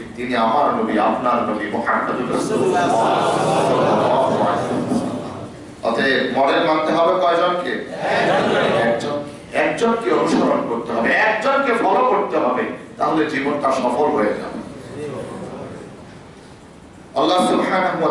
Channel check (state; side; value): identical; both; correlation 1.00